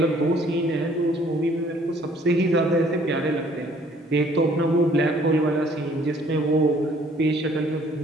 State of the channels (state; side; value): normal; both; correlation 0.59